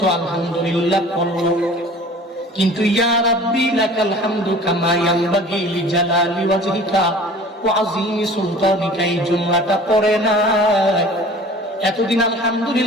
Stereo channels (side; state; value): both; normal; correlation 0.45